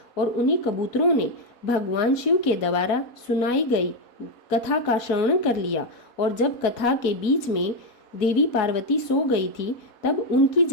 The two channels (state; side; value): late; right; 4.2 ms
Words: और उन्हीं कबूतरों ने भगवान शिव के द्वारा सुनाई गई कथा का श्रवण कर लिया। और जब कथा के बीच में देवी पार्वती सो गई थी तब उनकी